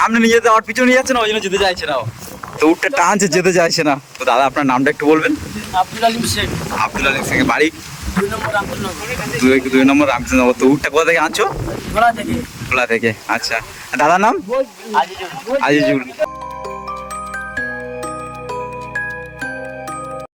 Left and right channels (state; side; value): identical; both; correlation 1.00